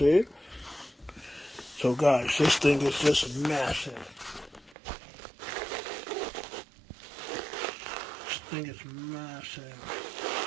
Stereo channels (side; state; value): left; drops out; at 4.8 s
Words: So guys, this thing is just massive. This thing is massive.